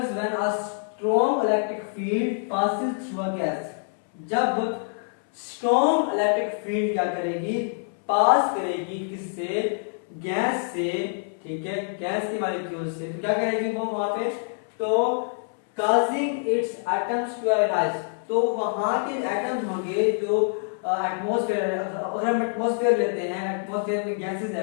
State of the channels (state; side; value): silent; right; 61 dB below the other